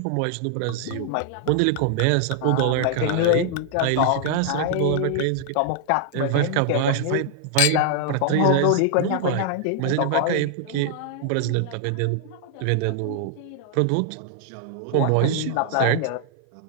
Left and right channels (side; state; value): both; different; correlation 0.00